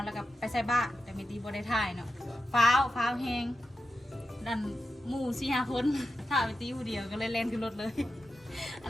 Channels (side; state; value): both; normal; correlation 0.90